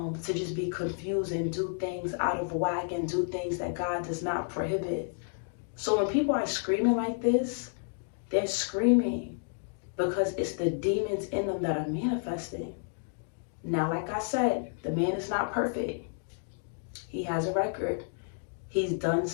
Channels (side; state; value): right; silent; digital silence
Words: just be confused and do things out of whack and do things that God does not prohibit. So when people are screaming like this, they're screaming because it's the demons in them that are manifesting. Now, like I said, the man is not perfect. He has a record. He's done